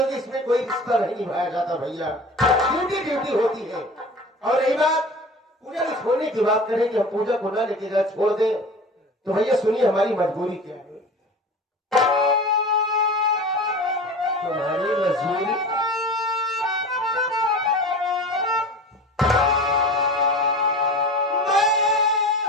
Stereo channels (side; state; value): both; normal; correlation 0.36